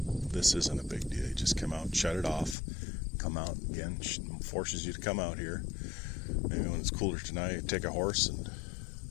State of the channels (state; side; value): drops out; right; at 2.6 s